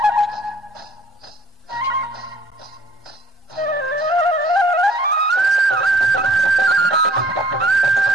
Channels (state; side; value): normal; both; correlation 0.56